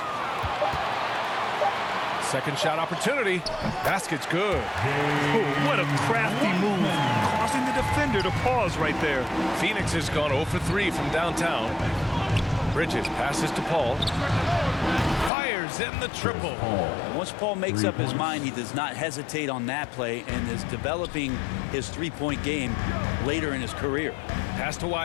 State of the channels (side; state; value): right; drops out; at 15.3 s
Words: Second shot opportunity. Basket's good. Oh, what a crafty move. Causing the defender to pause right there. Phoenix has gone 0 for 3 from downtown. Bridges passes to Paul. Fires in the triple. Once Paul makes up his mind, he does not hesitate on that play and is developing his three-point game later in his career. Pass to